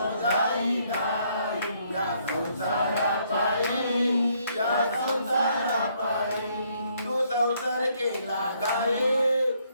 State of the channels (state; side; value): inverted; both; correlation -0.69